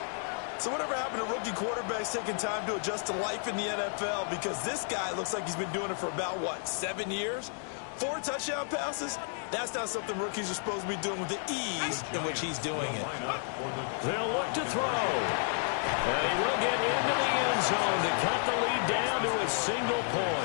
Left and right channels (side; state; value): right; silent; 57 dB below the other